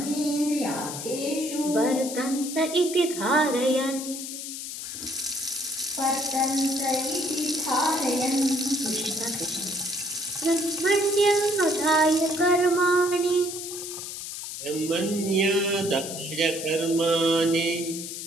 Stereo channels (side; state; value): left; noise; hiss, 8 dB below the sound